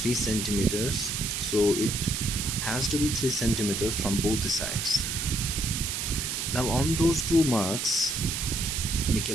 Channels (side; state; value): right; noise; hiss, 2 dB below the sound